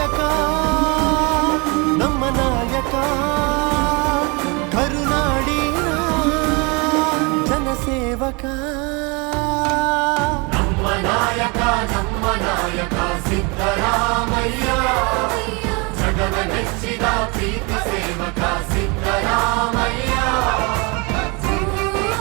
ನಮ್ಮ ನಾಯಕ ಕರುನಾಡಿನ ಜನಸೇವಕ ನಮ್ಮ ನಾಯಕ ಸಿದ್ದರಾಮಯ್ಯ ಜಗವ ಮೆಚ್ಚಿದ ಪ್ರೀತಿ ಸೇವಕ ಸಿದ್ದರಾಮಯ್ಯ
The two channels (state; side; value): quieter; left; 29.5 dB